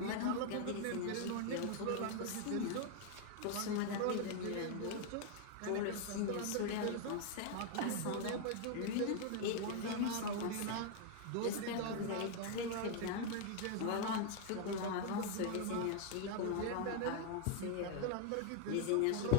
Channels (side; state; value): both; different; correlation 0.00